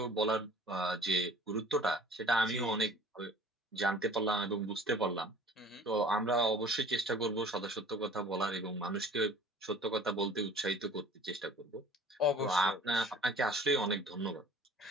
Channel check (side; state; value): both; normal; correlation 0.48